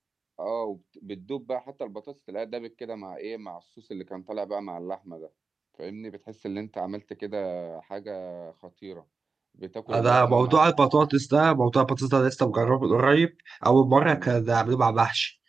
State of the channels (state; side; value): quieter; left; 4.4 dB